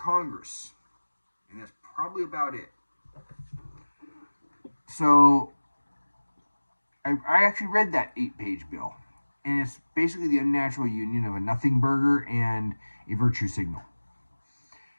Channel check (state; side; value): inverted; both; correlation -1.00